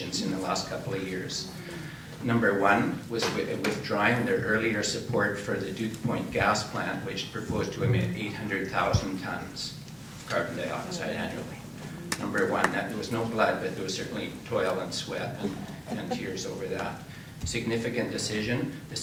in the last couple of years. Number one was withdrawing their earlier support for the Duke Point gas plant, which proposed to emit 800,000 tons of carbon dioxide annually. Number one, that there was no blood, but there was certainly toil and sweat and tears over that. Significant decision. The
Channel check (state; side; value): identical; both; correlation 1.00